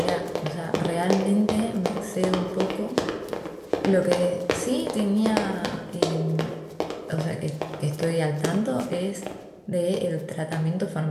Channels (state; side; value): identical; both; correlation 1.00